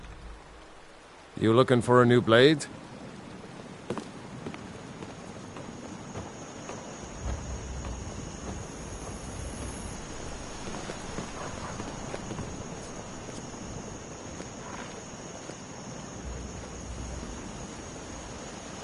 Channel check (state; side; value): identical; both; correlation 1.00